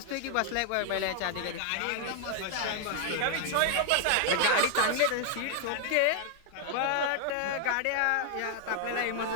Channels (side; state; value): both; different; correlation 0.00